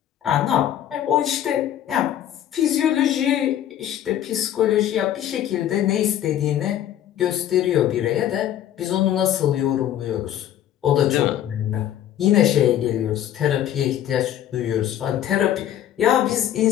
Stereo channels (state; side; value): quieter; right; 11.3 dB